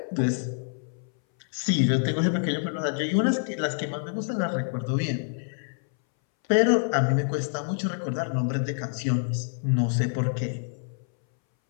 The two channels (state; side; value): silent; right; 60 dB below the other